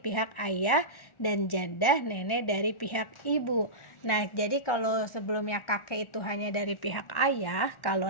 ayah, dan jadah nenek dari pihak ibu. Nah, jadi kalau sebelumnya kakek itu hanya dari pihak ayah, kalau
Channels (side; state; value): right; late; 1.4 ms